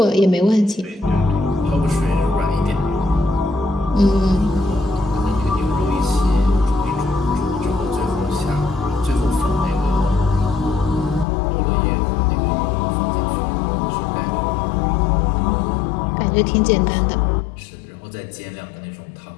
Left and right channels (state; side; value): drops out; right; at 11.2 s